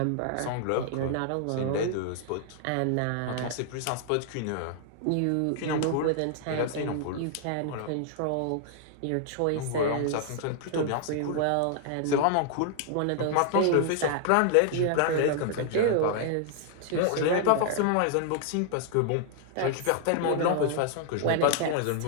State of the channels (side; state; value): both; different; correlation -0.01